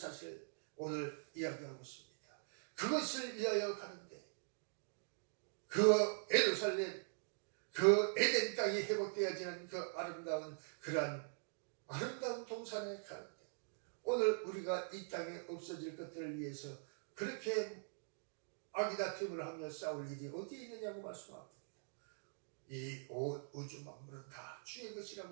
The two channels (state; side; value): silent; left; digital silence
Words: 오늘 이야기하고 있습니다. 그것을 위하여 가는데 그 예루살렘 그 에덴 땅이 회복되어지는 그 아름다운 그러한 아름다운 동산에 가는데 오늘 우리가 이 땅에 없어질 것들을 위해서 그렇게 아기다툼을 하며 싸울 일이 어디에 있느냐고 말씀합니다. 이 우주 만물은 다 주의